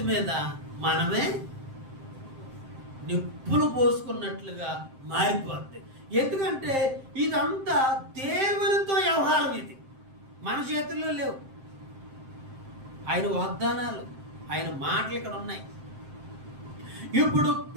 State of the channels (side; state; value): left; late; 7.6 ms